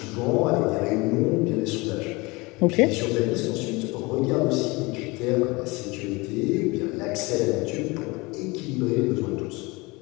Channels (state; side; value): quieter; right; 24.6 dB